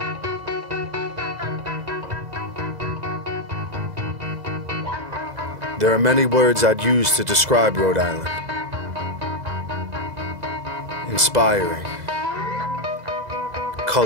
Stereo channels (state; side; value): late; left; 2.0 ms